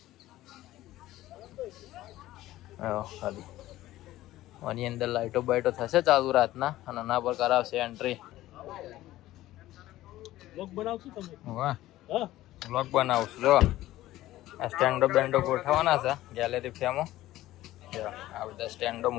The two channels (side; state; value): right; quieter; 15.5 dB